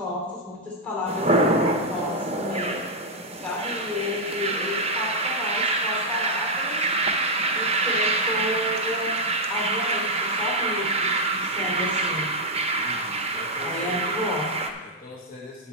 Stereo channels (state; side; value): normal; both; correlation -0.03